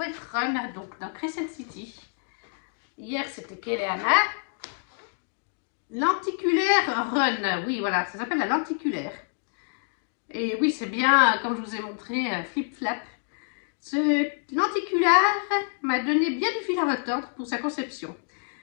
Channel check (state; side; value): silent; right; 60 dB below the other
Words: être run. Donc, dans Crescent City. Hier, c'était Keleana. Lenticulaire run. Oui, voilà, ça s'appelle la lenticulaire. Et oui, c'est bien, comme je vous ai montré, flip-flap. Ce lenticulaire m'a donné bien du fil à retordre pour sa conception.